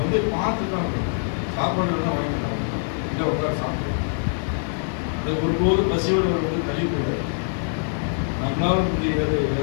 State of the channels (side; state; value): right; silent; digital silence